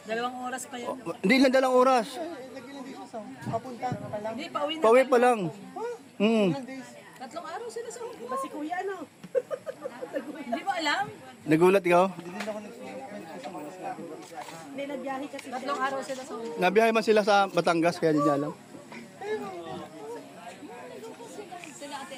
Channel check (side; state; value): both; identical; correlation 1.00